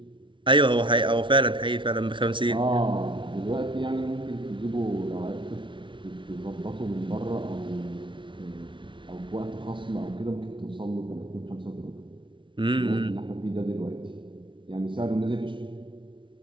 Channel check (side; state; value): left; late; 0.24 ms